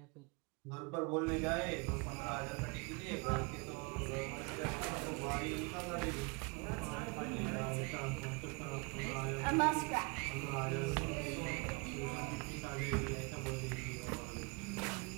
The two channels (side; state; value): left; quieter; 31.4 dB